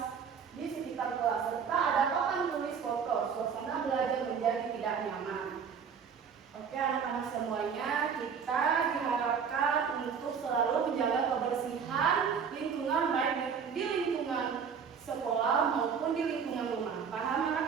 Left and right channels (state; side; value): quieter; left; 6.6 dB